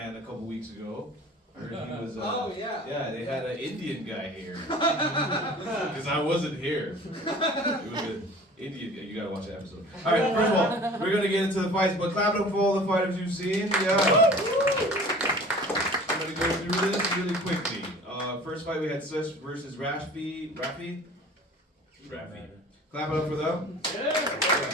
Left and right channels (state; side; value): normal; both; correlation 0.44